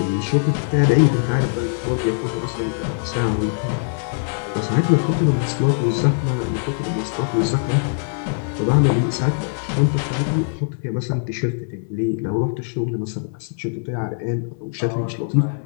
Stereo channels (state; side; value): silent; right; digital silence